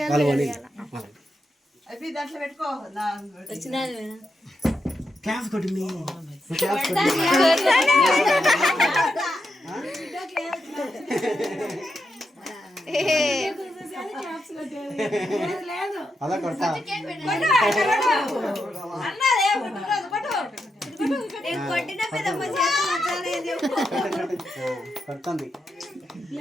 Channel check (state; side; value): normal; both; correlation 0.85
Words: క్లాస్ కొట్టి మీ అలా కొడతా కొడుతుంది.